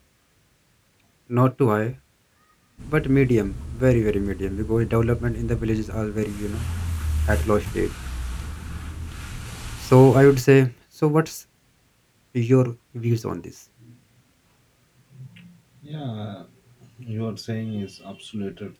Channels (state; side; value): identical; both; correlation 1.00